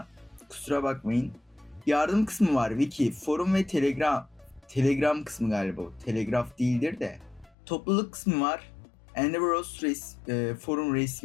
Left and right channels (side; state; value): right; drops out; at 7.6 s